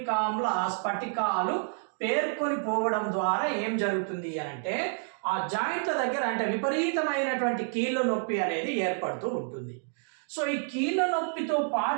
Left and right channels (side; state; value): left; silent; 59 dB below the other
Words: ఆమ్ల స్ఫటికాలు పేర్కొని పోవడం ద్వారా ఏం జరుగుతుంది అని అంటే ఆ జాయింట్ల దగ్గర అంటే విపరీతమైనటువంటి కీళ్ళ నొప్పి అనేది ఏర్పడుతూ ఉంటుంది. సో ఈ కీళ్ళ నొప్పితో